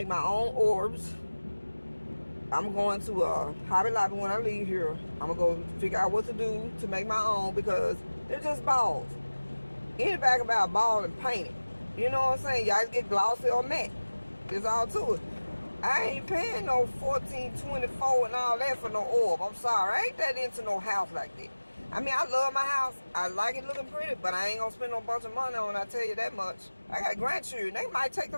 my own orbs. I'm going to Hobby Lobby when I leave here. I'm going to go figure out what to do to make my own because they're just balls. Anybody can buy a ball and paint it. You know what I'm saying? Y'all get glossy or matte. It's all to it. I ain't paying no $14.24 and all that for no orb. I'm sorry. I ain't that into no house like that. I mean, I love my house. I like it looking pretty, but I ain't going to spend no bunch of money on it, I tell you that much. I got grandchildren. They might take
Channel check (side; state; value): both; inverted; correlation -1.00